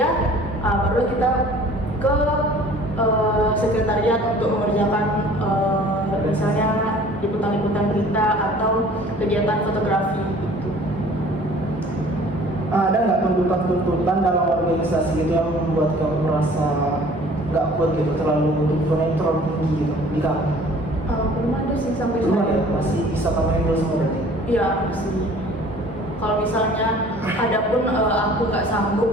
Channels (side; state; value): both; normal; correlation 0.50